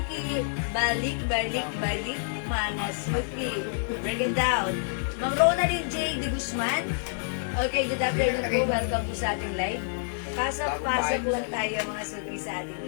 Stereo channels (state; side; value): silent; right; digital silence